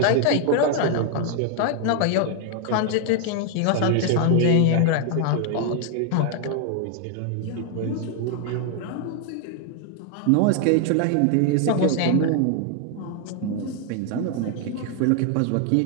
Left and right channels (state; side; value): different; both; correlation 0.00